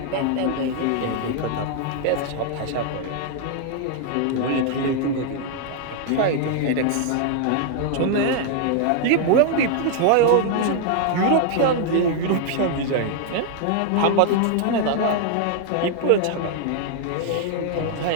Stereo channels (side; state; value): both; different; correlation 0.00